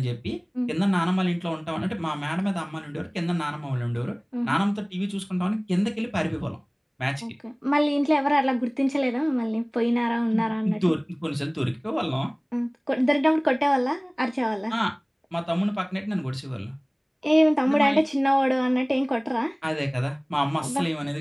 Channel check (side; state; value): both; identical; correlation 1.00